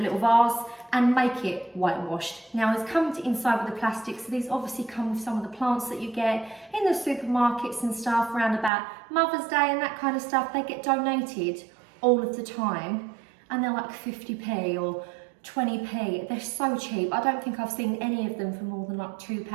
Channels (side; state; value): left; drops out; at 8.7 s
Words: vase, and make it whitewashed. Now, it's come inside with the plastic, so these obviously come with some of the plants that you get in the supermarkets and stuff around about Mother's Day and that kind of stuff. They get donated all of the time, and they're like 50p or 20p. They're so cheap. I don't think I've seen any of them for more than like